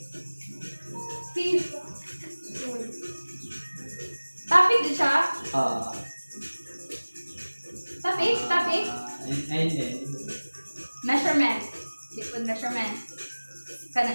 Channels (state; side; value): inverted; both; correlation -1.00